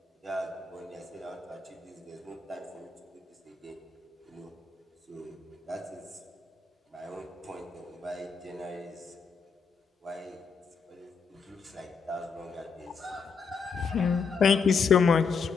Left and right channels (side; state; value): right; quieter; 5.3 dB